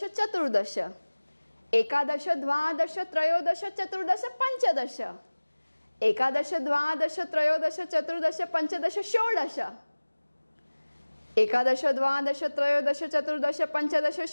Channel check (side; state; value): both; inverted; correlation -1.00